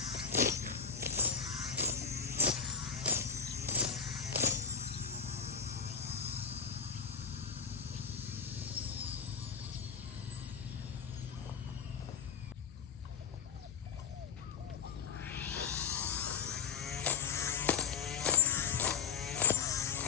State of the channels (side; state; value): right; quieter; 6.4 dB